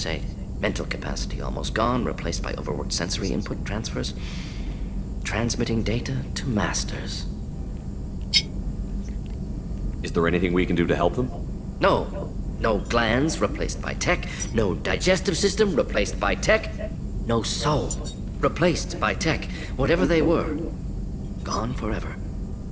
Mental capacity almost gone, replaced by overworked sensory input transfers. Transmitting data to masters. Is there anything we can do to help them? No. No glands replaced by tech. No digestive system replaced by tech. No soul replaced by tech. Whatever they were, gone forever.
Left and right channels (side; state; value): both; identical; correlation 1.00